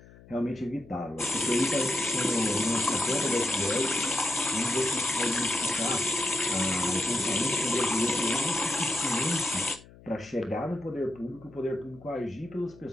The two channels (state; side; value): noise; left; hum, 22 dB below the sound